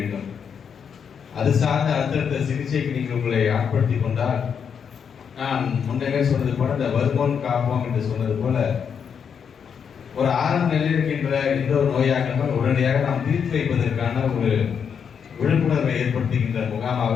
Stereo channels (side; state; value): right; quieter; 7.1 dB